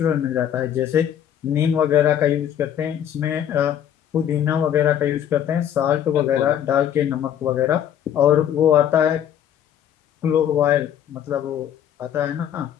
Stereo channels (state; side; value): quieter; right; 9.9 dB